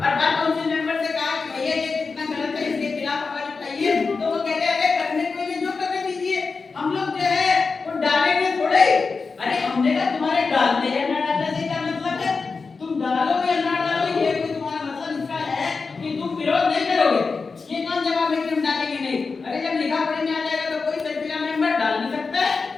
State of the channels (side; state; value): right; quieter; 4.5 dB